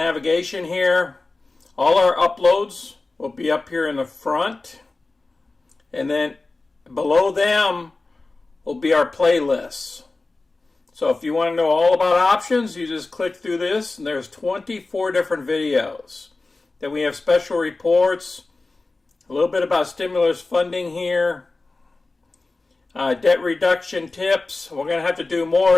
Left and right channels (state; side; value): quieter; right; 3.4 dB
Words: here. All our uploads will be up here in the front. And then below them will be our playlists. So if you want to know all about options, you just click through this, and there's 24 different videos. Then we have special reports, a little bit about stimulus funding here, debt reduction tips. We're going to have to do